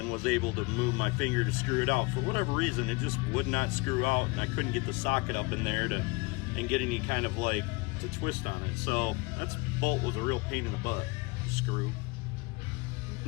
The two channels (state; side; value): quieter; right; 26.7 dB